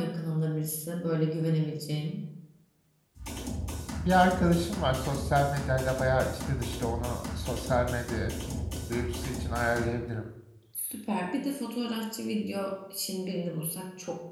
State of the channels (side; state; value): both; identical; correlation 1.00